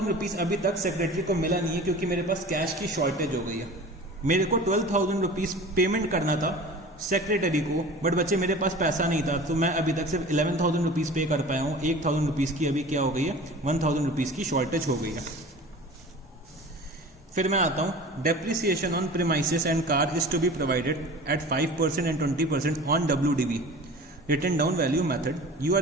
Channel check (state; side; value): normal; both; correlation 0.39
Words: रुपीज अभी तक सेक्रेटरी को मिला नहीं है क्योंकि मेरे पास कैश की शॉर्टेज हो गई है। मेरे को 12,000 रुपीज पेमेंट करना था सेक्रेटरी को, बट बच्चे मेरे पास पैसा नहीं था, तो मैं अभी तक सिर्फ 11,000 रुपीज पे कर पाया हूँ। 1,000 रुपीज की अभी क्या हो गई है 1,000 रुपीज की शॉर्टेज हो गई है। फिर मैं आता हूं, depreciation on premises and car is to be provided at 5% and 20% on WDV written down value method. You are